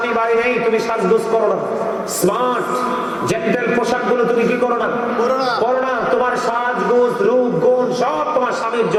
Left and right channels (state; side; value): identical; both; correlation 1.00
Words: বাড়ি নেই তুমি সাজগোজ করো না, স্মার্ট জেন্টেল পোশাকগুলো তুমি কি করো না, করো না। তোমার সাজগোজ, রূপ, গুণ সব তোমার স্বামীর